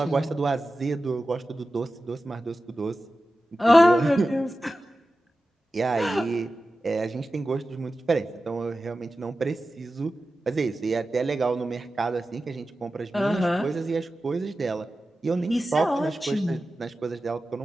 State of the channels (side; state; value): both; normal; correlation 0.94